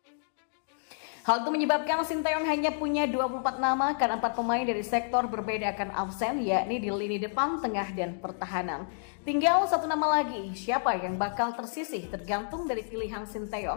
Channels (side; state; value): right; silent; digital silence